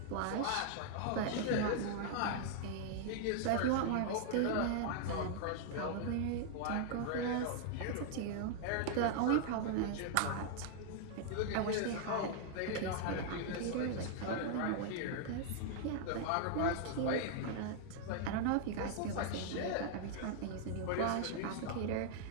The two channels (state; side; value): different; both; correlation -0.01